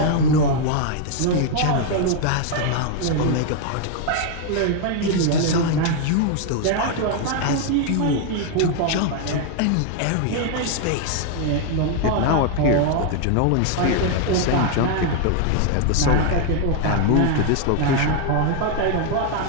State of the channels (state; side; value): different; both; correlation 0.00